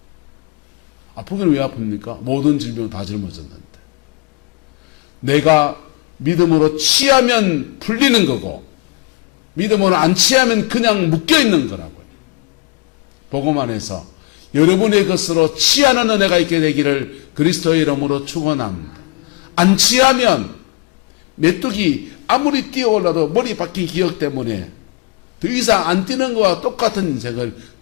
아프기는 왜 아픕니까? 모든 질병을 다 짊어졌는데. 내가 믿음으로 취하면 풀리는 거고, 믿음으로 안 취하면 그냥 묶여있는 거라고요. 복음 안에서 여러분의 것으로 취하는 은혜가 있게 되기를 그리스도의 이름으로 축원합니다. 안 취하면 메뚜기 아무리 뛰어올라도 머리 박힌 기억 때문에 더 이상 안 뛰는 것과 똑같은 인생을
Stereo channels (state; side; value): quieter; right; 28.3 dB